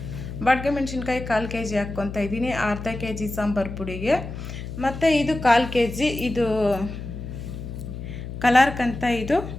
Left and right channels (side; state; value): left; noise; hum, 9 dB below the sound